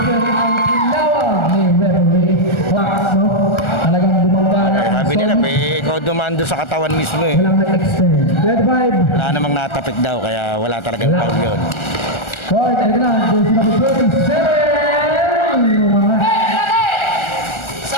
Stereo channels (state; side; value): late; right; 1.4 ms